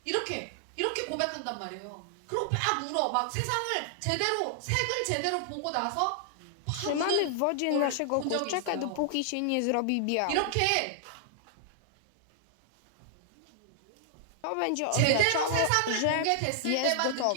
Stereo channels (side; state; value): both; different; correlation -0.01